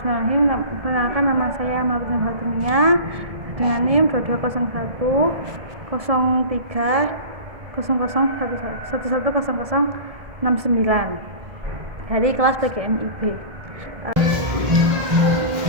Perkenalkan, nama saya Martina Fatimia dengan NIM 2201 03 110069 dari kelas PGMIB.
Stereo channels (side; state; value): left; late; 1.7 ms